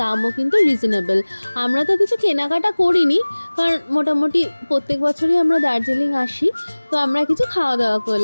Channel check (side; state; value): both; inverted; correlation -1.00